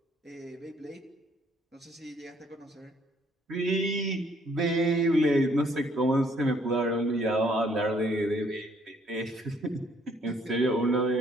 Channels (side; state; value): both; normal; correlation 0.65